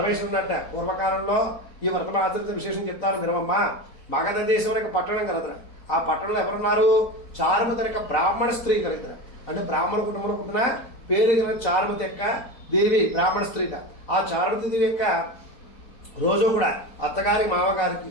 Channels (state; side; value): late; right; 4.0 ms